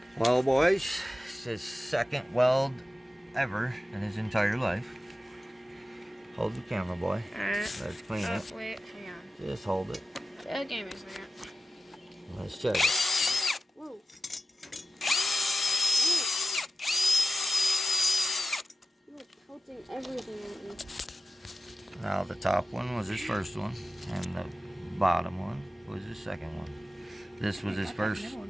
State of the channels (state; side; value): normal; both; correlation 0.94